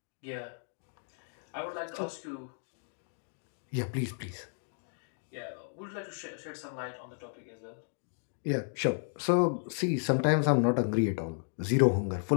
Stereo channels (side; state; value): right; silent; digital silence